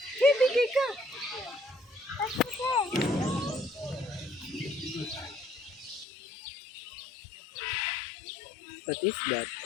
Bigay ka. What is that?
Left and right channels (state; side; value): drops out; right; at 6.1 s